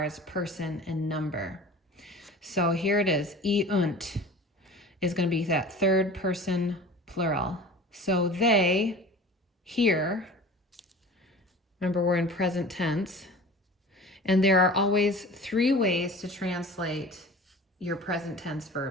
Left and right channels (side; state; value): both; normal; correlation 0.40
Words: as person and number. So here it is. Eunt is going to be that third person plural. So they hear. Remember, we're in present tense. And there are always three ways to translate your present tense